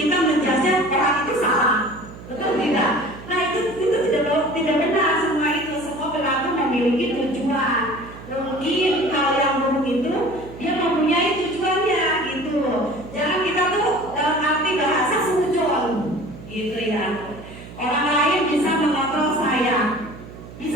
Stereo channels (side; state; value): right; noise; hum, 16 dB below the sound